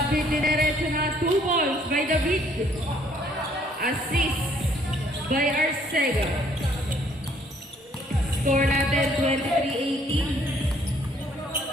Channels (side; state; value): both; normal; correlation 0.63